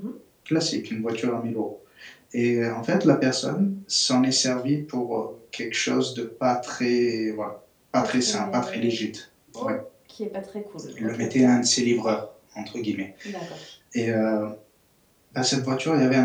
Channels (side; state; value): both; identical; correlation 1.00